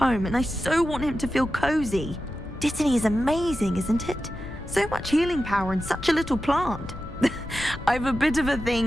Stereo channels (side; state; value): left; noise; rumble, 12 dB below the sound